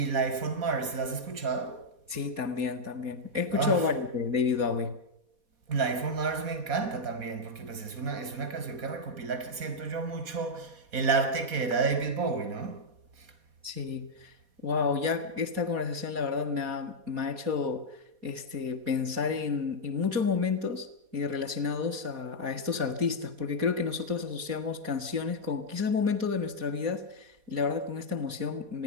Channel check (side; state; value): left; late; 4.2 ms